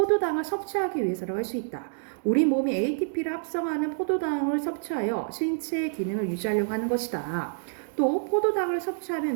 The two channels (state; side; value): silent; left; digital silence